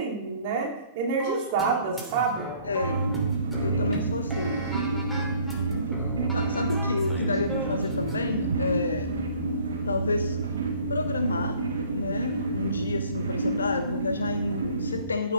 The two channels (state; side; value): inverted; both; correlation -0.57